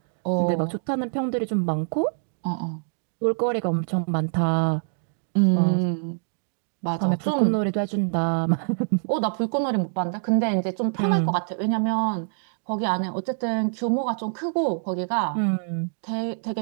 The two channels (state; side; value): silent; left; digital silence